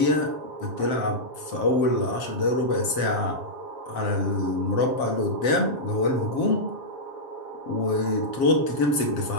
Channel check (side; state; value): right; late; 7.5 ms